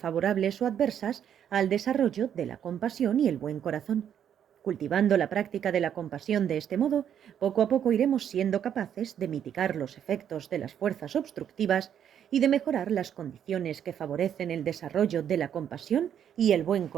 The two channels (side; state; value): left; quieter; 9.2 dB